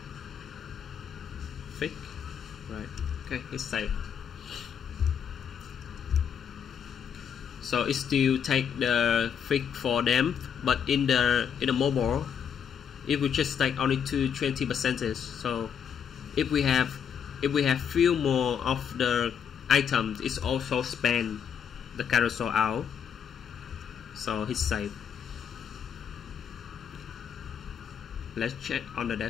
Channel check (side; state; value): right; quieter; 7.8 dB